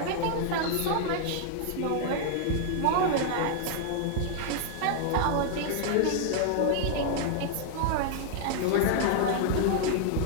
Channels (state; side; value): different; both; correlation 0.00